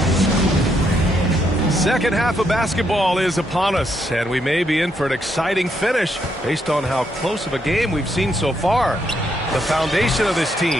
Second half of basketball is upon us, and we may be in for an exciting finish based on how close of a game we've seen so far. The foundation of this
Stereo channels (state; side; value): normal; both; correlation 0.76